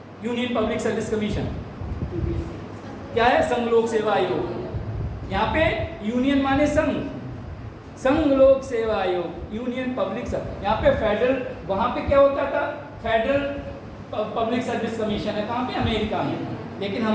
यूनियन पब्लिक सर्विस कमीशन क्या है, संघ लोक सेवा आयोग, यहाँ पे यूनियन माने संघ, संघ लोक सेवा आयोग, यूनियन पब्लिक सर्विस। यहाँ पे फेडरल, वहाँ पे क्या होता था, फेडरल पब्लिक सर्विस कमीशन है, कहाँ पे, अमेरिका में। लेकिन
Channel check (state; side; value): identical; both; correlation 1.00